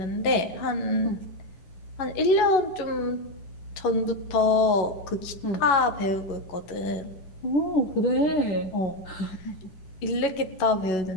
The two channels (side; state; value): right; late; 11 ms